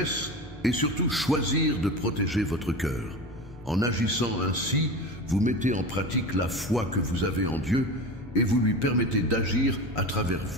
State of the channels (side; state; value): both; normal; correlation 0.29